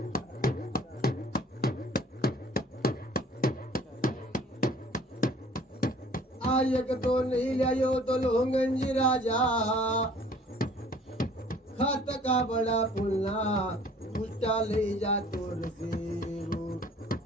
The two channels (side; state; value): both; normal; correlation 0.53